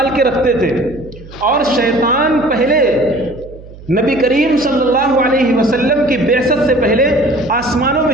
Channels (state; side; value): noise; right; hum, 18 dB below the sound